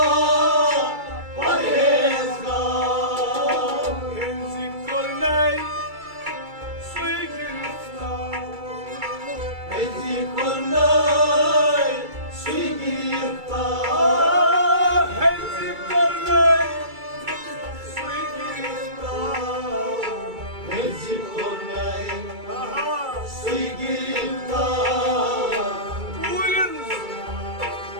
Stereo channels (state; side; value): late; left; 2.3 ms